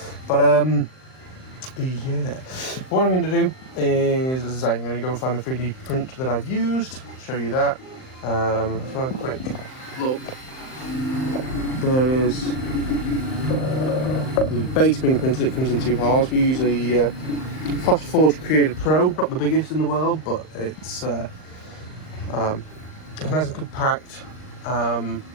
But yeah, what I'm going to do is, as I say, I'm going to go and find the 3D print that I've used, show you that. Just want a quick look. There is the base being printed. It comes in 2 halves. We use a Flash Forge Creator Pro, not the biggest in the world, but it's nice and compact, and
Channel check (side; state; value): right; late; 39 ms